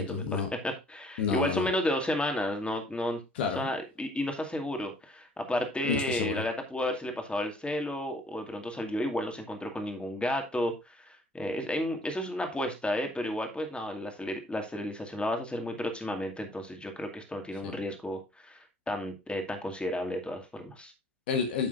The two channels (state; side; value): normal; both; correlation 0.57